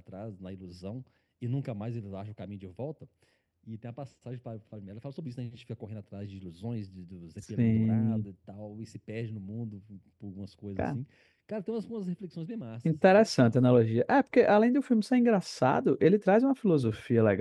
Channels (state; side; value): identical; both; correlation 1.00